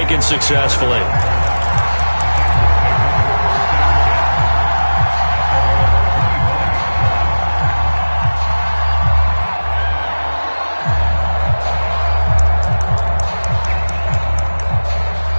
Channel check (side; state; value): both; inverted; correlation -1.00